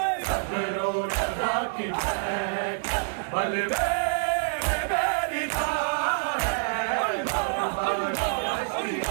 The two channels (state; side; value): silent; left; digital silence